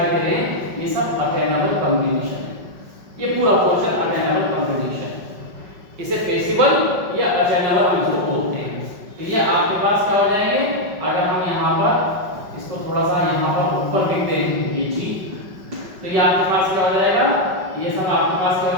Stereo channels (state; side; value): late; left; 5.3 ms